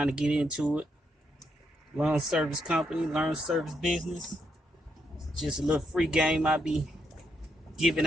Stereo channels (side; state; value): both; normal; correlation 0.78